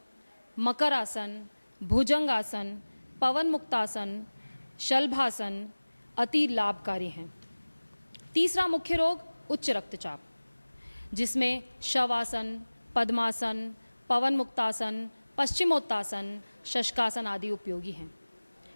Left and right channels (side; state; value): both; inverted; correlation -1.00